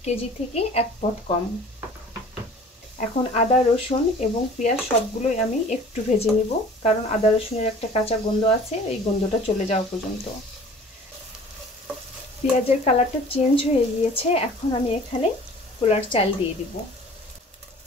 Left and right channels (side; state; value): both; normal; correlation 0.47